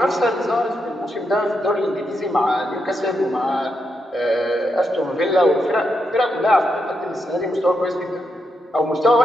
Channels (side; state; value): both; normal; correlation 0.83